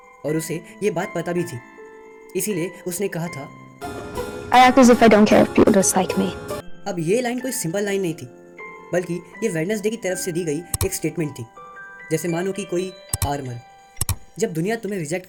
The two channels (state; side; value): identical; both; correlation 1.00